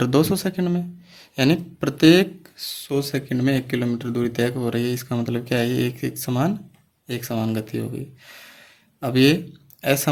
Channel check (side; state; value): both; identical; correlation 1.00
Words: 200 सेकंड में, यानी प्रत्येक 100 सेकंड में 1 किलोमीटर दूरी तय हो रही है। इसका मतलब क्या है? एक समान गति हो गई। अब ये